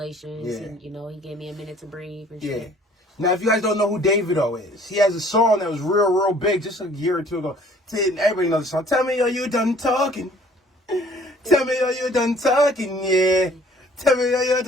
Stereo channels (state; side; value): normal; both; correlation 0.55